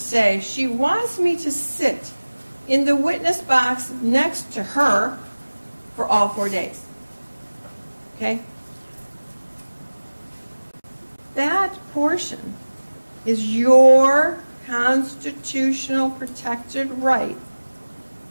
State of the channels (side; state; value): both; inverted; correlation -1.00